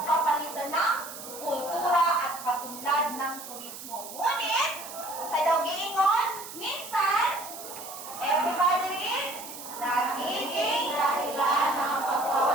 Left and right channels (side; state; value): right; noise; hiss, 12 dB below the sound